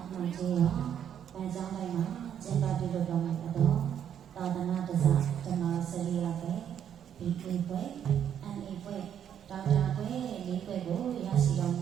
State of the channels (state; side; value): quieter; left; 9.2 dB